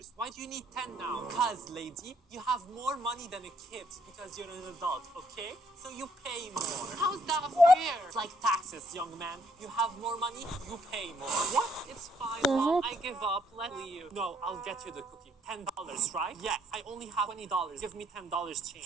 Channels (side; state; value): both; normal; correlation 0.69